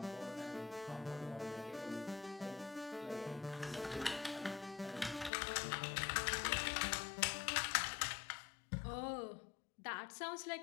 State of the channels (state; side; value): drops out; right; at 5.3 s